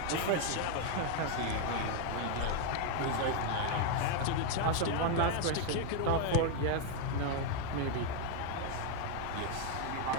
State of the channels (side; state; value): both; different; correlation 0.01